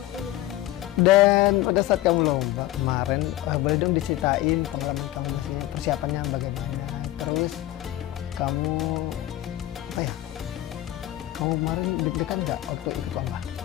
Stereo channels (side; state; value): right; quieter; 15.3 dB